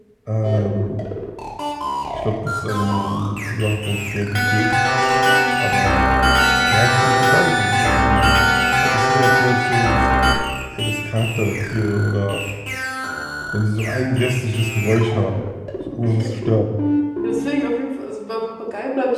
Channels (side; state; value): both; identical; correlation 1.00